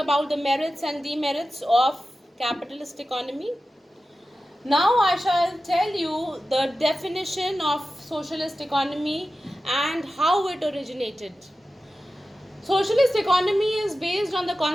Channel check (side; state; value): both; normal; correlation 0.94